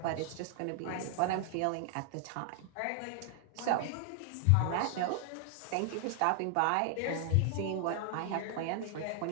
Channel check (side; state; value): both; different; correlation 0.00